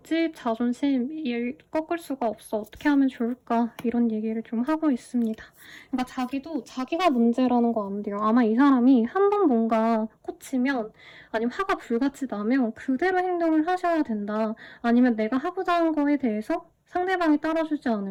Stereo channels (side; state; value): both; identical; correlation 1.00